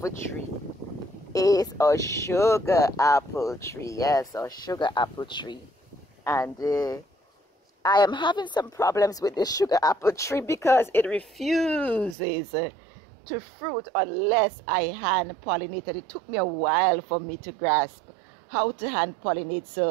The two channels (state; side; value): drops out; left; at 12.2 s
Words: tree is a sugar apple tree. Yes, a sugar apple tree. And I am having some problems with this sugar apple tree because it refuses to fruit unless I hand pollinate. And it took me a while for me to grasp how to hand pollinate.